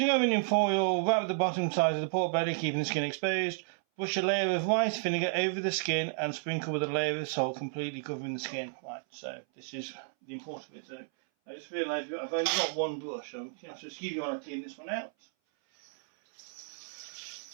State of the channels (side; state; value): left; silent; 56 dB below the other